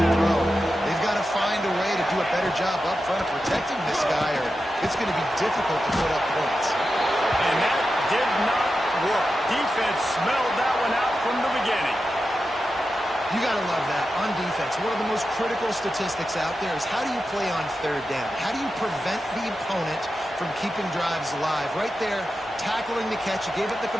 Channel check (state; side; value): normal; both; correlation 0.90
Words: throw. They've got to find a way to do a better job up front of protecting this guy, or it's going to be difficult to put up points. And that did not work. Defense smelled that one out from the beginning. You got to love that. On defense, one of the most critical statistics out there is how do you play on third down? How do you prevent the opponent from keeping drives alive? Right there, tackling the catch. You gave it the